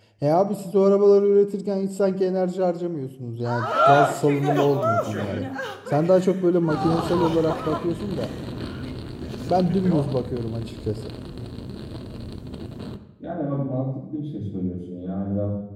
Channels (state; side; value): identical; both; correlation 1.00